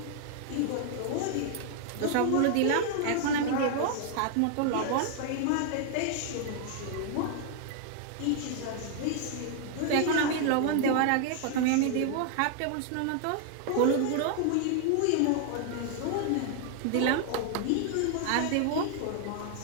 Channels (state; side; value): different; both; correlation 0.00